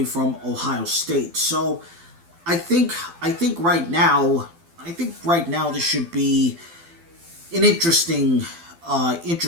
from Ohio State. So I think right now this should be an interesting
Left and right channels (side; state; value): left; late; 12 ms